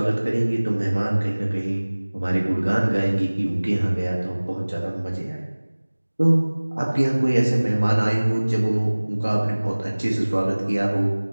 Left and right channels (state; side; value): inverted; both; correlation -1.00